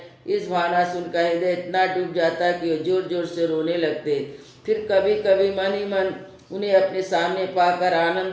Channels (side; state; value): both; identical; correlation 1.00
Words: इस भावना से उनका हृदय इतना डूब जाता कि वो जोर जोर से रोने लगते। फिर कभी कभी मन ही मन उन्हें अपने सामने पाकर